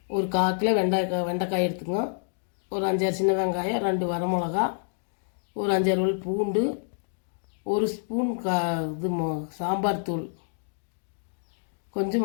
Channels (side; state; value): right; silent; digital silence